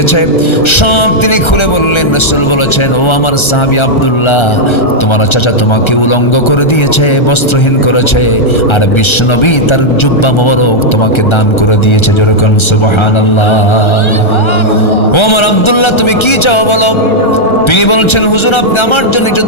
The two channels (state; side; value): late; right; 1.3 ms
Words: সব তিনি খুলে বললেন। রাসূল বলেছেন, ও আমার সাহাবী আব্দুল্লাহ, তোমার চাচা তোমাকে উলঙ্গ করে দিয়েছে, বস্ত্রহীন করেছে, আর বিশ্বনবী তার জুব্বা মোবারক তোমাকে দান করে দিয়েছে। যেরকম সুবহানাল্লাহ। ও আমার আব্দুল্লাহ, তুমি কি চাও বলো? তিনি বলছেন, হুজুর আপনি আমার জন্য একটু